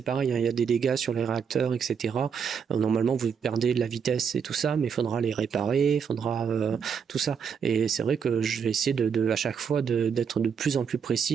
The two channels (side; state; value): left; quieter; 6.8 dB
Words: pareil, hein, il y a des dégâts sur les réacteurs, etc. Normalement, vous perdez de la vitesse et tout ça, mais il faudra les réparer, il faudra tout ça. Et c'est vrai que je vais essayer à chaque fois d'être de plus en plus